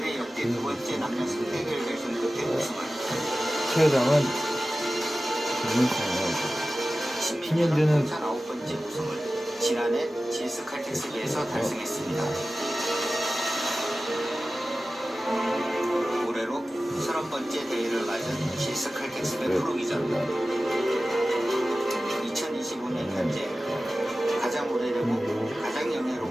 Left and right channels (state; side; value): normal; both; correlation 0.95